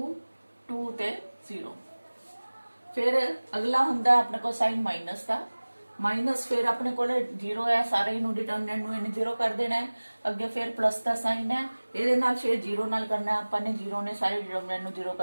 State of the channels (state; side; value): inverted; both; correlation -1.00